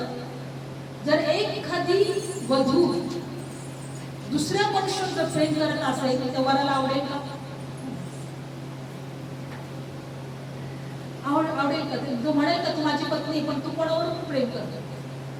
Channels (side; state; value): both; identical; correlation 1.00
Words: जर एखादी वधू दुसऱ्या मनुष्यावर जर प्रेम करत असेल तर त्या वराला आवडेल का? आवडेल का? तो म्हणेल का तू माझी पत्नी, पण तू कोणावर प्रेम करतो?